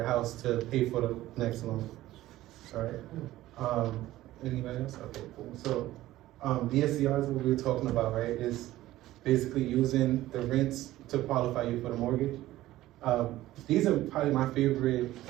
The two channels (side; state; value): left; quieter; 15.6 dB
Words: house to pay for the next loan. All right. Anybody else? Okay, cool. So DSCR is what we were talking about, right? Is basically using the rents to qualify you for the mortgage. These are probably my favorite